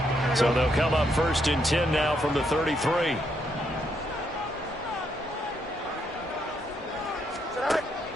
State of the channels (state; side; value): normal; both; correlation 0.76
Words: So they'll come up first and 10 now from the 33.